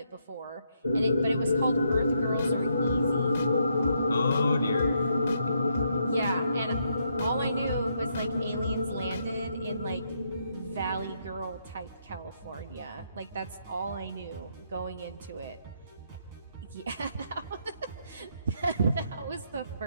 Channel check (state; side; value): inverted; both; correlation -0.76